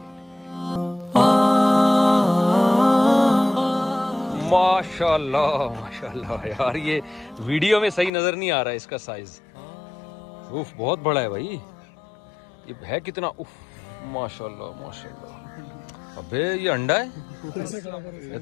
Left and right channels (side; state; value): right; drops out; at 8.1 s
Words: माशाल्लाह माशाल्लाह यार, ये वीडियो में सही नजर नहीं आ रहा है इसका साइज। उफ बहुत बड़ा है भाई, ये है कितना? उफ माशाल्लाह माशाल्लाह। अबे ये अंडा है, ये